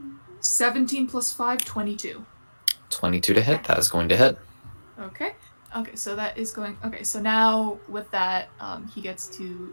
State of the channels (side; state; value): both; inverted; correlation -1.00